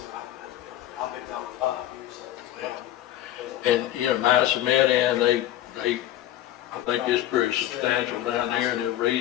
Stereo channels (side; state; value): right; quieter; 13.3 dB